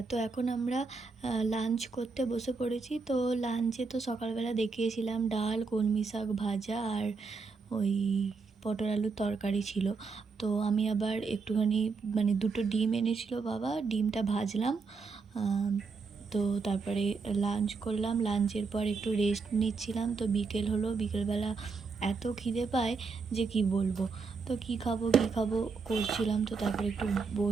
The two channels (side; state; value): left; quieter; 4.6 dB